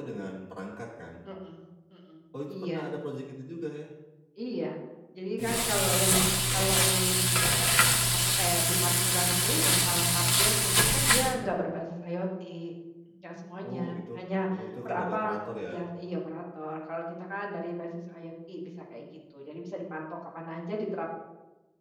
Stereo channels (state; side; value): identical; both; correlation 1.00